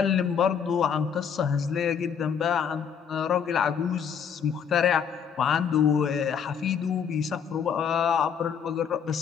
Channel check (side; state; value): right; quieter; 7.3 dB